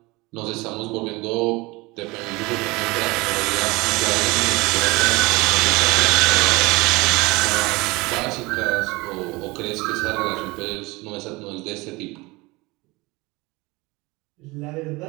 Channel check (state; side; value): quieter; left; 23.3 dB